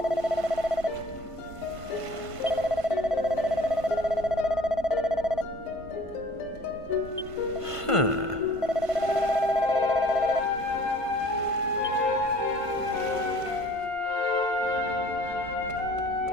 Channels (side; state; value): right; late; 1.5 ms